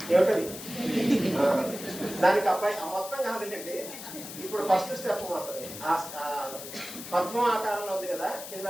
దానికి అబ్బాయి మొత్తం కాదండి. ఇప్పుడు ఫస్ట్ స్టెప్ మాత్రమే. పద్మం ఆకారంలో ఉంది కదా, కింద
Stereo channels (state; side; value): noise; left; hiss, 11 dB below the sound